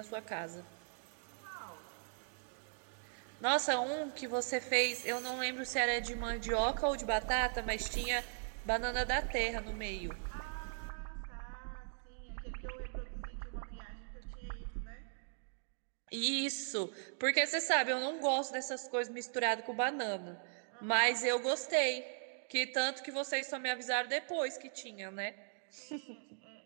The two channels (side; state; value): left; silent; digital silence